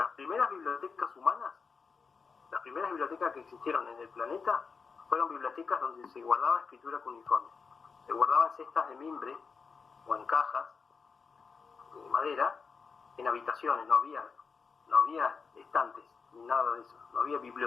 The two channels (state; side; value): quieter; right; 5.2 dB